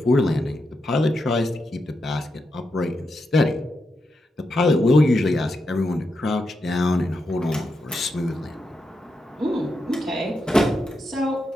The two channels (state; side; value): normal; both; correlation 0.85